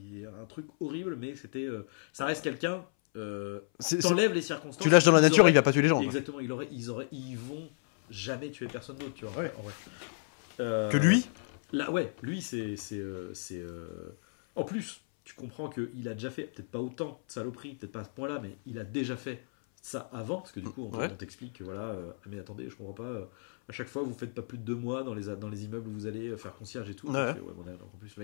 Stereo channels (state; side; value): silent; right; 56 dB below the other